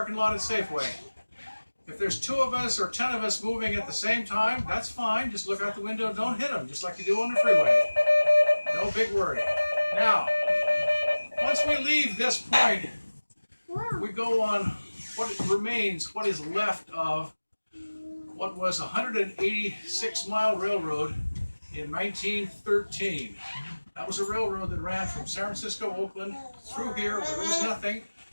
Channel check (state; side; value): inverted; both; correlation -1.00